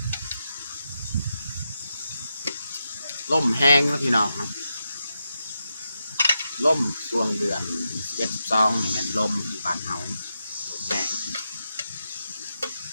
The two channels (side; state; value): both; inverted; correlation -0.87